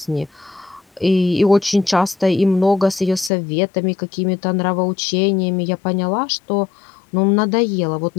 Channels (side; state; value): right; drops out; at 3.3 s